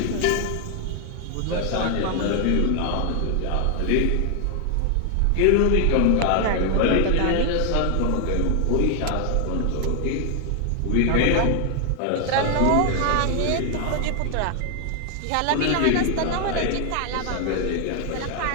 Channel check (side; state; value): both; different; correlation 0.00